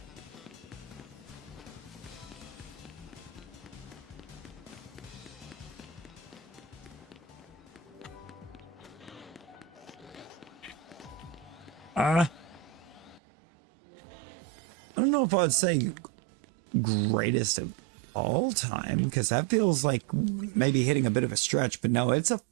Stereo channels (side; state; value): left; drops out; at 13.2 s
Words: I don't know if I'd say greatest of all time, because that feels like maybe hitting a bit of a stretch, but no, it's a